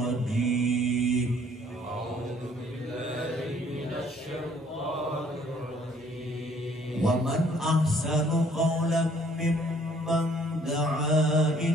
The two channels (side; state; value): both; normal; correlation 0.60